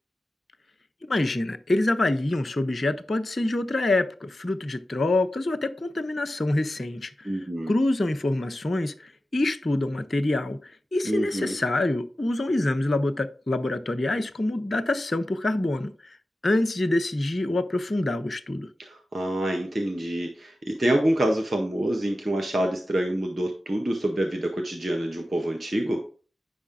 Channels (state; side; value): normal; both; correlation 0.93